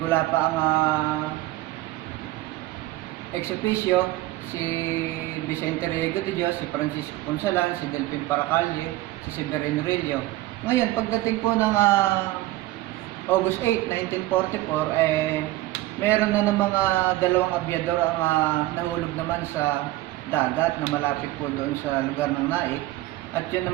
ang ex-officio, si Vicente Riego de Dios, si Francisco Consalan, si Delphin Paracalle, si Severino Rillo. Ngayon, pagdating po ng August 8, 1944, meron na ng mga 2 abyador ang nahulog naman sa dagat na malapit po doon sa lugar ng Naik. At yun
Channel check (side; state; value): left; quieter; 17.3 dB